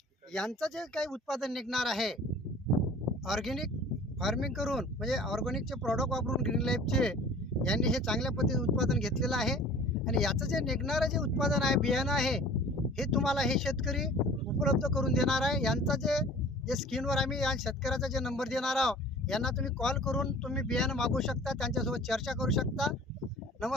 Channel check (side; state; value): both; normal; correlation 0.45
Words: यांचं जे काही उत्पादन निघणार आहे ऑर्गॅनिक फार्मिंग करून म्हणजे ऑर्गॅनिकचे प्रॉडक्ट वापरून ग्रीन लाईफचे यांनी हे चांगल्या पद्धतीने उत्पादन घेतलेलं आहे आणि याचं जे निघणारं जे उत्पादन आहे बियाणं आहे हे तुम्हाला हे शेतकरी उपलब्ध करून देणार आहे. यांचा जे स्क्रीनवर आम्ही या शेतकऱ्याचा जे नंबर देणार आहोत यांना तुम्ही कॉल करून तुम्ही बियाणं मागवू शकता, त्यांच्यासोबत चर्चा करू शकता.